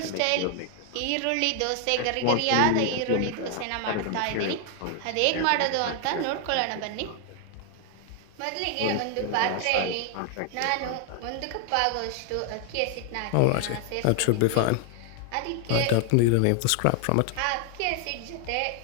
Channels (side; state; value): both; different; correlation 0.00